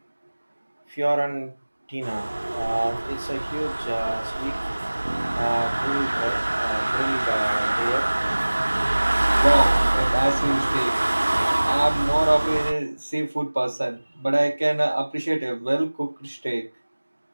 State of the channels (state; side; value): inverted; both; correlation -1.00